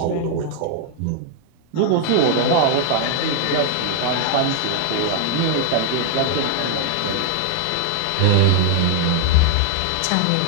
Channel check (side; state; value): both; different; correlation 0.00